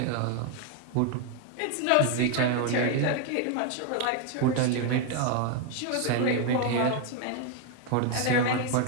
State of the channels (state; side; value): different; both; correlation 0.01